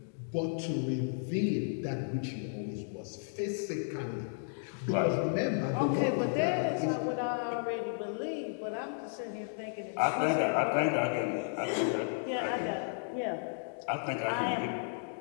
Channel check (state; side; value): silent; right; digital silence